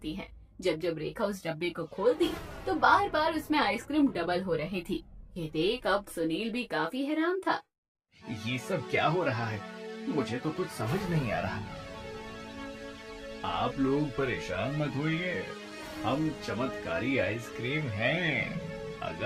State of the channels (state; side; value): identical; both; correlation 1.00